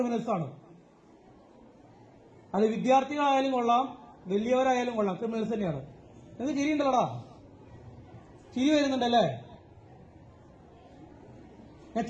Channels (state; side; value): identical; both; correlation 1.00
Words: ആണ്. അത് വിദ്യാർത്ഥികളായാലും കൊള്ളാം, വലിയവരായാലും കൊള്ളാം, ക്രിമിനൽസ് തന്നെയാണ്. നിങ്ങൾക്ക് ചിരിയുണ്ടല്ലോടാ, ചിരി വരുന്നുണ്ടല്ലേ? ഞാൻ